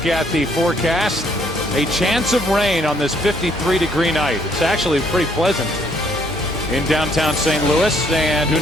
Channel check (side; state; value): right; noise; hum, 17 dB below the sound